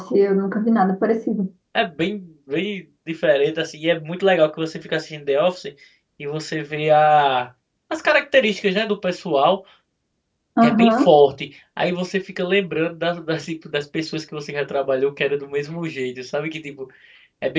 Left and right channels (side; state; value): both; identical; correlation 1.00